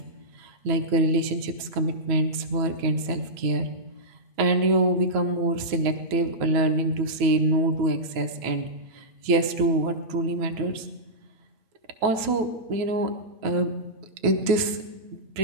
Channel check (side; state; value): left; late; 9.2 ms